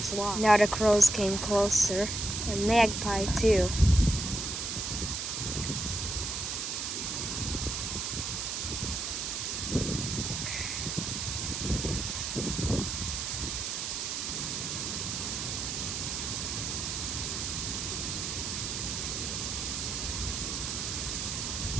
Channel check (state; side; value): noise; right; hiss, 2 dB below the sound